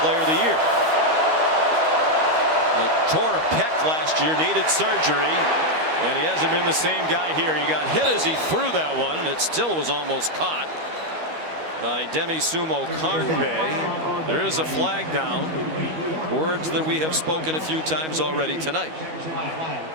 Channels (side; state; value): left; late; 13 ms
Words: of the year. Tore a pec last year, needed surgery, and he hasn't been the same guy here. He got hit as he threw that one, and it still was almost caught. by Demi Sumo Karnbe. There is a flag down. Words that we have spoken a few times already tonight.